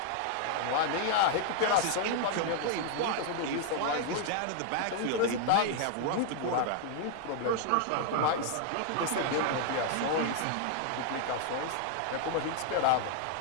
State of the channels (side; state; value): both; different; correlation 0.00